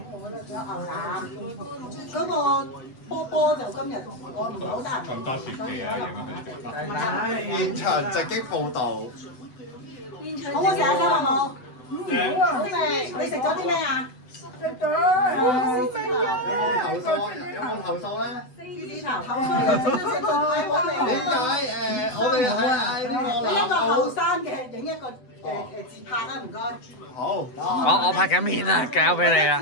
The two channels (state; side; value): late; right; 7.9 ms